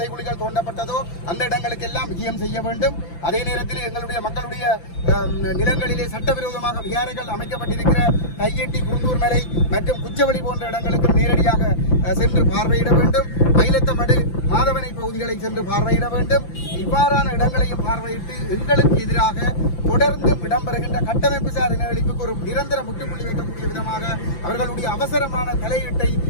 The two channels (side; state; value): right; late; 5.9 ms